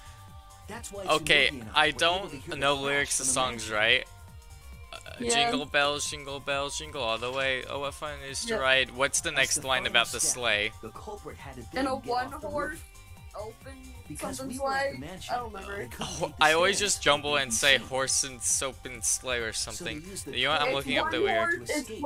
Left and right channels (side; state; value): both; identical; correlation 1.00